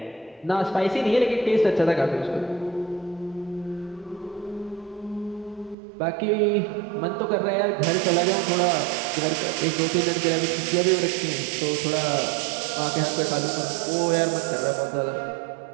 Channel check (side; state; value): left; drops out; at 5.8 s